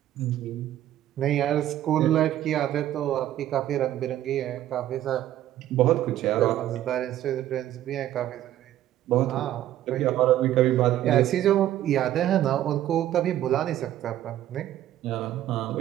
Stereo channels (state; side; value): quieter; left; 12.8 dB